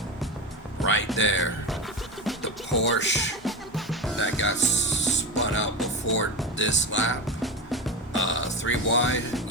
Right there. The Porsche that got spun out before this lap. 3 wide.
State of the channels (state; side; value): normal; both; correlation 0.21